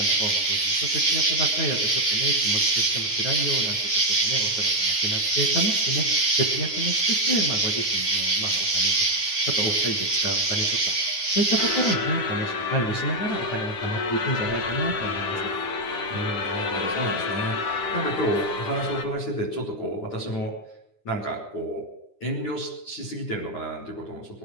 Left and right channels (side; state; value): right; late; 9.7 ms